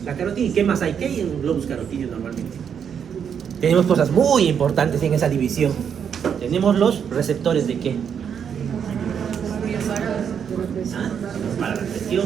La carotida. ¿Y qué más hay? ¿Qué hay en un globus carotídeo normalmente? Tenemos cosas muy importantes en esa división. Tenemos los receptores de qué? ¿Ah? Para la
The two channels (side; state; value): left; quieter; 7.7 dB